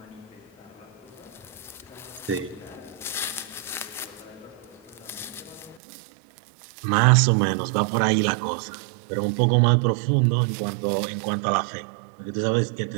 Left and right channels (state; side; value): drops out; left; at 5.8 s